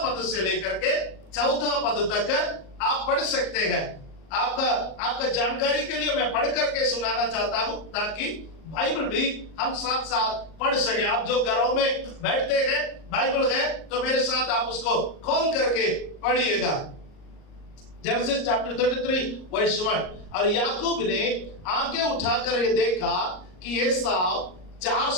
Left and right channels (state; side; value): late; right; 38 ms